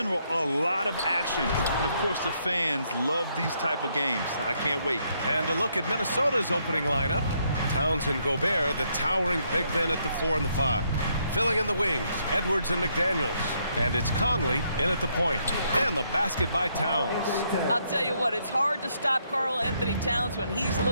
a lot of action. And, of course, the fans love these type of games. I can't wait. And a look at Minnesota's opening lineup. Towns and Gobert, the towering big men at the 4 and the 5. Filling in the wings, Edwards and McDaniels. And it's Conley in at the point. And the basket by Towns. I'll tell you what, it's hard to stop Karl Anthony Towns when he's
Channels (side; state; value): both; inverted; correlation -0.74